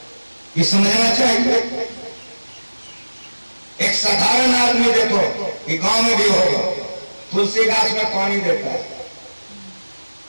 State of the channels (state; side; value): inverted; both; correlation -1.00